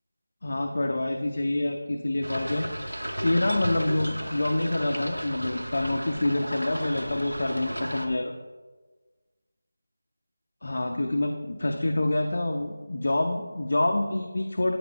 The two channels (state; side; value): inverted; both; correlation -0.98